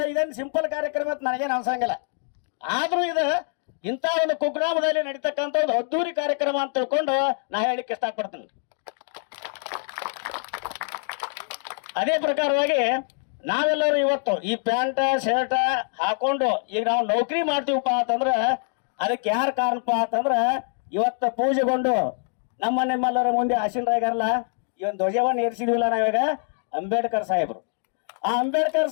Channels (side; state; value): right; silent; 56 dB below the other